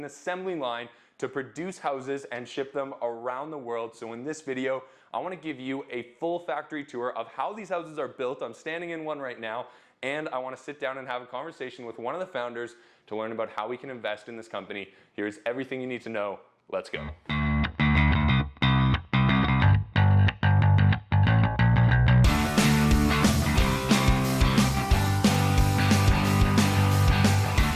assembly line to produce houses and ship them around the world. So in this video, I want to give you a full factory tour of how these houses are built. I'm standing in one right now, and I want to sit down and have a conversation with one of the founders to learn about how we can invest in this company. Here's everything you need to know. Let's go.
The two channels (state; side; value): identical; both; correlation 1.00